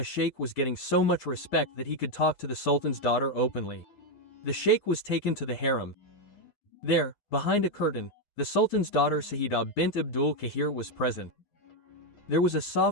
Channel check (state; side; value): late; right; 9.5 ms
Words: sheikh was getting so much respect that he could talk to the sultan's daughter openly. The sheikh was taken to the harem. There, behind a curtain, the sultan's daughter Sayyida bint Abdul Kahir was present. There was a